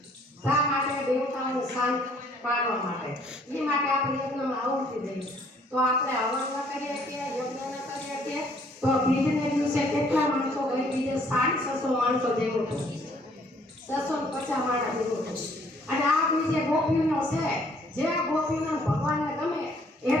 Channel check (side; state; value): both; normal; correlation 0.62